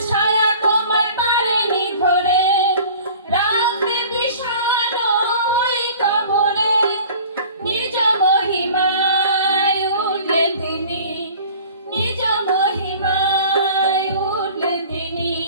ছায়া তোমায় পারেনি ধরে, রাখতে বিষণ্ণ ওই কবরে। নিজ মহিমায় উঠলেন তিনি, নিজ মহিমায় উঠলেন তিনি,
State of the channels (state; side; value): inverted; both; correlation -0.45